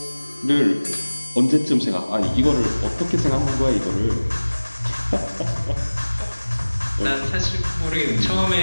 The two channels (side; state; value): both; inverted; correlation -1.00